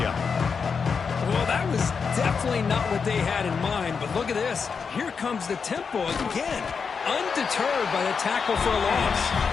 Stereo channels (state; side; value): quieter; right; 5.7 dB